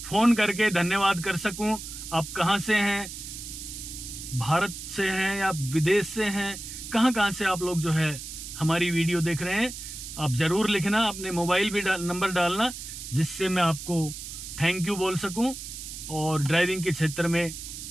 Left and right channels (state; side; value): noise; right; hiss, 10 dB below the sound